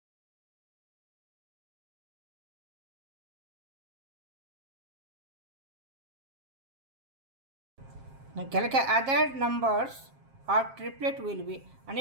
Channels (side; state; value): left; late; 7.5 ms